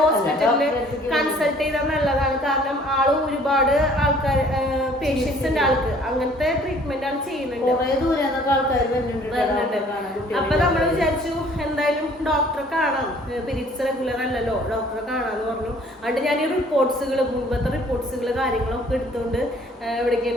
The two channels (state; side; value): normal; both; correlation 0.56